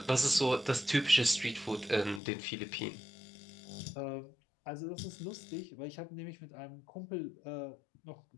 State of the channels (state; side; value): drops out; right; at 2.2 s